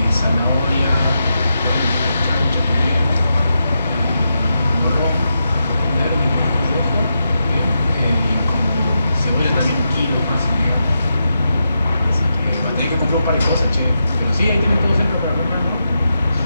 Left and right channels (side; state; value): both; inverted; correlation -0.86